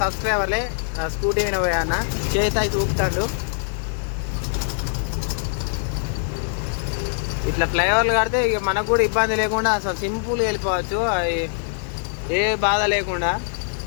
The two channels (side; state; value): right; silent; 64 dB below the other